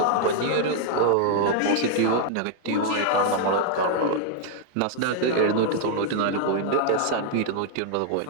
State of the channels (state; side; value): different; both; correlation 0.00